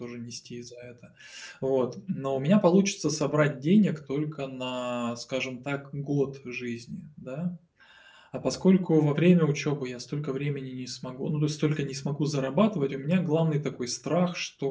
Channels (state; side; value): identical; both; correlation 1.00